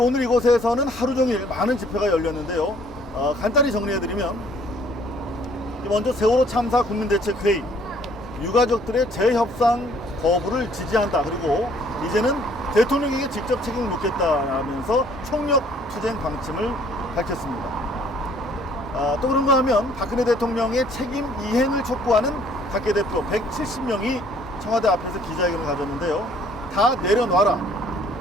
이곳에서는 하루 종일 많은 집회가 열렸는데요. 간단히 정리해드리면 먼저 세월호 참사 국민대책회의 유가족들의 재협상 거부를 지지한다. 그리고 이제는 대통령에게 직접 책임을 묻겠다라면서 총력 투쟁 방침을 밝혔습니다. 또 그런가 하면 박근혜 대통령의 책임 이행을 촉구하는 각계 대표 170명이 청와대 앞에서 기자회견을 가졌는데요. 다 내려놔라.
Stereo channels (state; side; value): normal; both; correlation 0.60